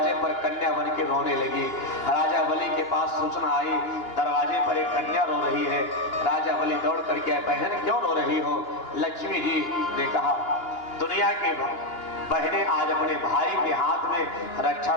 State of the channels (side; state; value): right; late; 2.9 ms